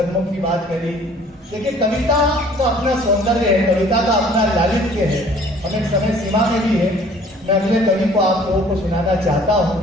की बात करी। देखिए, कविता का अपना सौंदर्य है, कविता का अपना लालित्य है, हम एक समय सीमा में भी है। मैं अगले कवि को आप लोगों को सुनाना चाहता हूं,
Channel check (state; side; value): normal; both; correlation 0.54